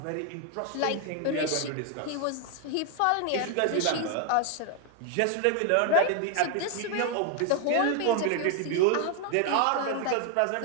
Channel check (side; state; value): both; different; correlation 0.00